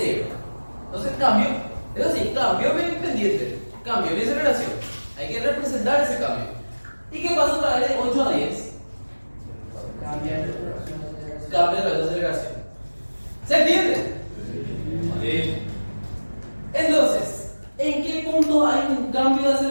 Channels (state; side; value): inverted; both; correlation -1.00